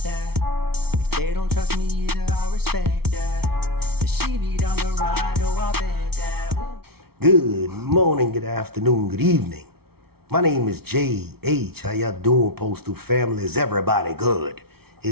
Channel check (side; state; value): left; late; 0.95 ms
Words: If they don't trust me either, I respect that. If she be down the ride, oh, I bet that. Ooh. Good morning, good afternoon, good evening. My name is J.H. How y'all doing, Postal family? Is everybody good?